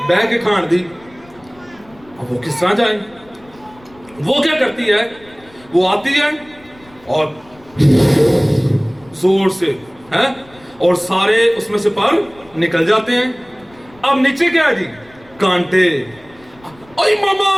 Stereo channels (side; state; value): left; noise; rumble, 27 dB below the sound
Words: बह के खान दी, अब वो किस तरह जाए? वो क्या करती है, वो आती है और जोर से है और सारे उसमें से पर निकल जाते हैं। अब नीचे क्या है जी? कांटे। आई मामा,